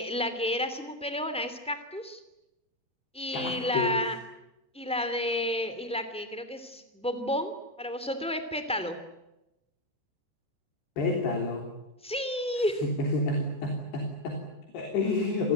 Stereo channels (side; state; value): both; normal; correlation 0.08